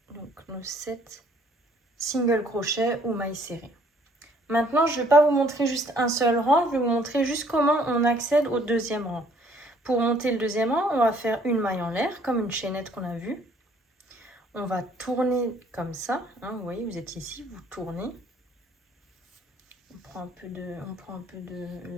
Donc nos 7 single crochets ou mailles serrées. Maintenant, je ne vais pas vous montrer juste un seul rang, je vais vous montrer juste comment on accède au deuxième rang. Pour monter le deuxième rang, on va faire une maille en l'air, comme une chaînette qu'on a vue. On va tourner comme ça, hein, vous voyez, vous êtes ici, vous tournez. On prend un peu de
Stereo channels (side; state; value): both; normal; correlation 0.61